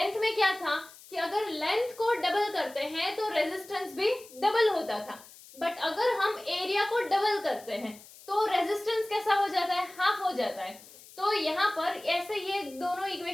में क्या था कि अगर लेंथ को डबल करते हैं तो रेजिस्टेंस भी डबल होता था, बट अगर हम एरिया को डबल करते हैं तो रेजिस्टेंस कैसा हो जाता है, हाफ हो जाता है। तो यहाँ पर ऐसे ये दोनों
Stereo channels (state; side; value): noise; left; hiss, 20 dB below the sound